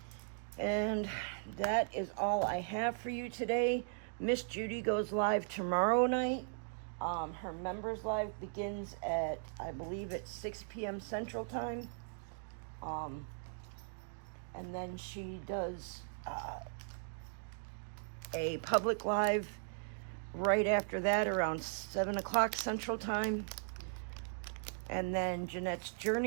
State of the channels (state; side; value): silent; left; digital silence